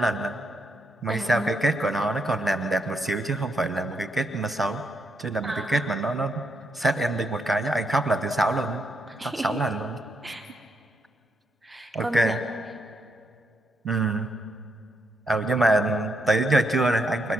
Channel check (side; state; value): both; normal; correlation 0.79